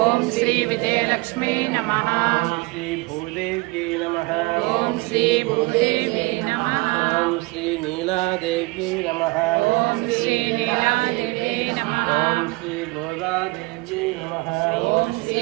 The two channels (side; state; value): left; quieter; 24.6 dB